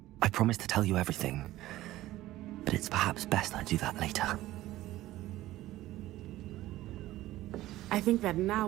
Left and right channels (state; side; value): quieter; left; 15.8 dB